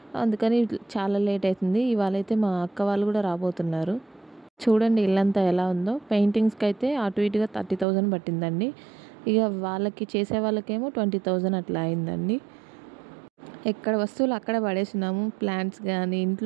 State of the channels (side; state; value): left; drops out; at 7.9 s